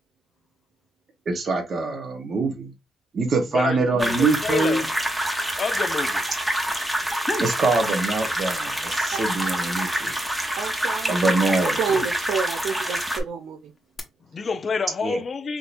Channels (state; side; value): normal; both; correlation 0.81